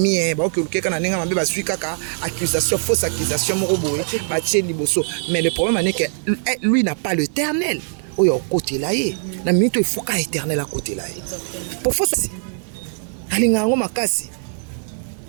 baoki olukeka na ndenge mabe bazwi kaka accusation fausse accusation moko boye batie liboso mais le problème est que lui n'a pas l'éternel oyo okotela ye na minute efoka éternel akotela ye pour fausse alinga yango makasi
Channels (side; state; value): left; silent; digital silence